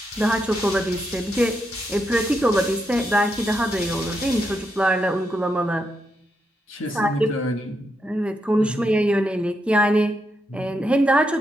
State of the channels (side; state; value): both; normal; correlation 0.82